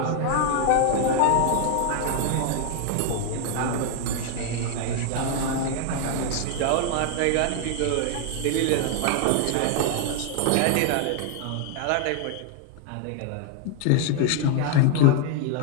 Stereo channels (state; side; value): different; both; correlation 0.00